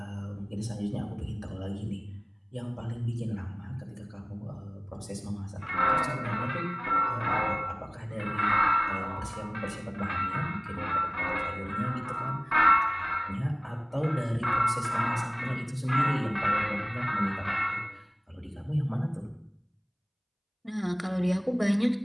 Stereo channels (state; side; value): identical; both; correlation 1.00